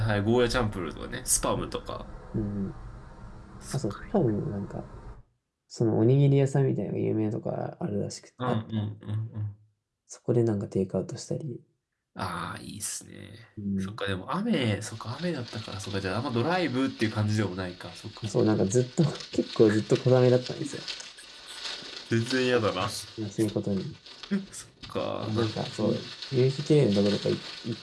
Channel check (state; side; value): identical; both; correlation 1.00